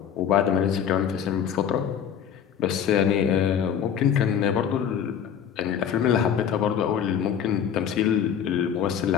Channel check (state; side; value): quieter; right; 8.5 dB